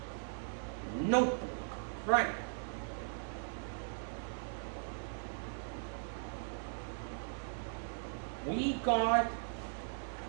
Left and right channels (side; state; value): left; silent; 52 dB below the other